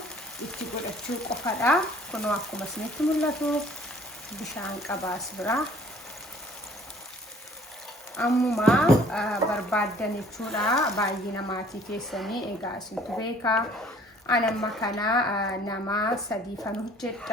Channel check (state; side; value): normal; both; correlation 0.55